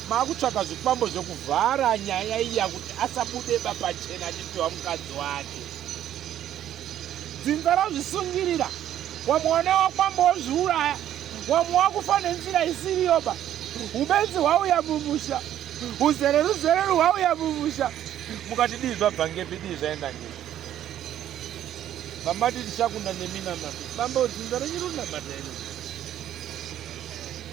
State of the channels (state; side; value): quieter; left; 11.4 dB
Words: maakutsvaka zvikwambo zvokuvhara nyaya iya kuti asabude pachena achipiwa mukadzi wake. Dzinza razvisungirira, wamwe wakwamba wozviuraya, wamwe wakufa nenzira isiriyoba. Ubenzi hwauya mumusha, uzereru hwauya mumusha, mukati dii zvabva ngepi dii zvaenda ngepi. Mamati tichakunda nemina mambi bamba dzinza renyu rinamata ino